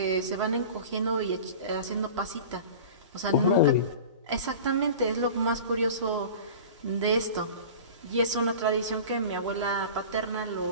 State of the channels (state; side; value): inverted; both; correlation -0.37